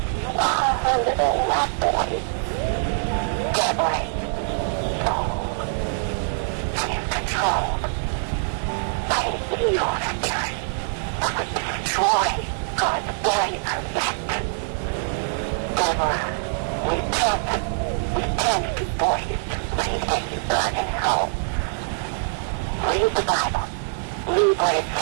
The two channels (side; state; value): left; silent; 63 dB below the other